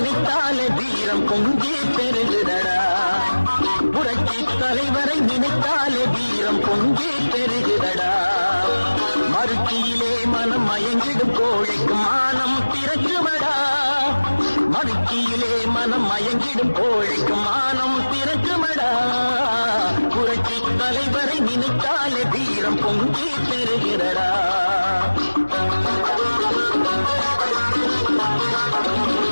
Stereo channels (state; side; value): inverted; both; correlation -1.00